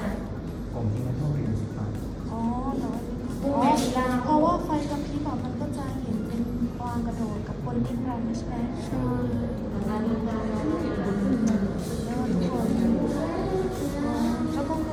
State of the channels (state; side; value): identical; both; correlation 1.00